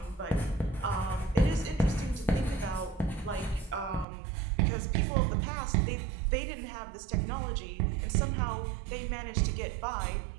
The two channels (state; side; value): drops out; left; at 4.0 s